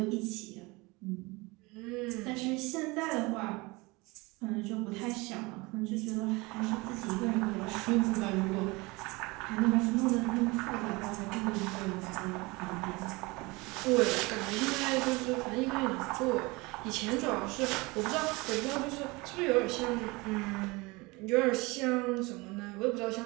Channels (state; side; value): quieter; left; 24.4 dB